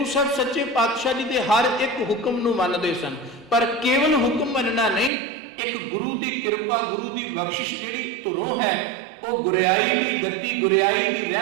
साहब सच्चे पातशाह जी दे हर एक हुक्म नूं मनदे सन। पर केवल हुक्म मनना नहीं, एक गुरु की कृपा गुरु की बख्शिश जिहड़ी धुरों है वो गुरियाई की गति गुरियाई की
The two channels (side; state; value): left; drops out; at 5.1 s